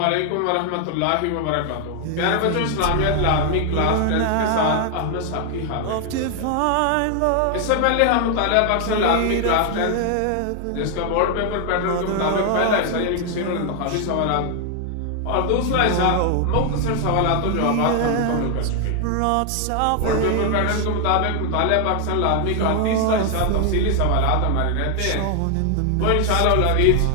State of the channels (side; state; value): both; different; correlation 0.00